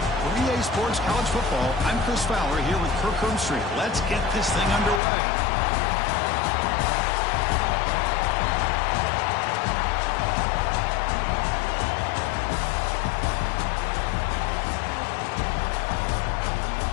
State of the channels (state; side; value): drops out; right; at 5.0 s